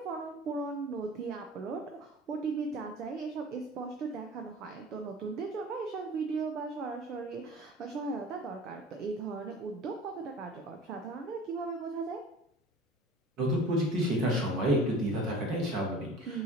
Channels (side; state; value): both; normal; correlation 0.42